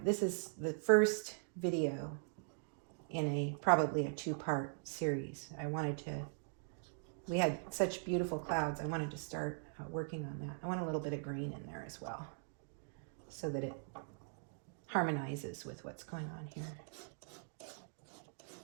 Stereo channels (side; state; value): left; silent; digital silence